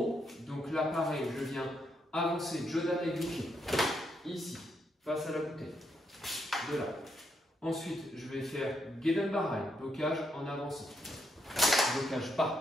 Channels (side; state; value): both; normal; correlation 0.78